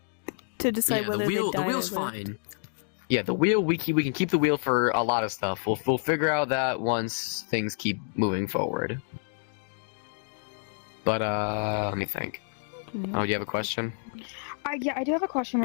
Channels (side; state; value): right; silent; 59 dB below the other